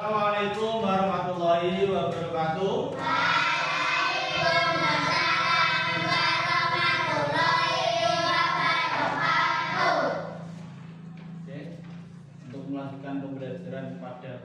warahmatullahi wabarakatuh. Waalaikumsalam warahmatullahi wabarakatuh. Oke, untuk melanjutkan pembelajaran pada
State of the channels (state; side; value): identical; both; correlation 1.00